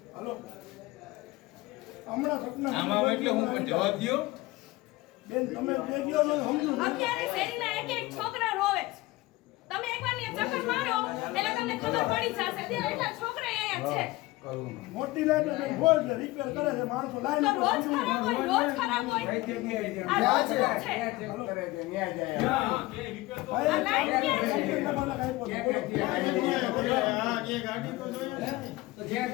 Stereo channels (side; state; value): right; quieter; 19.8 dB